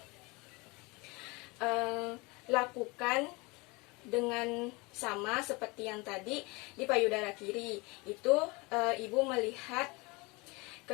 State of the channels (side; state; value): right; quieter; 25.9 dB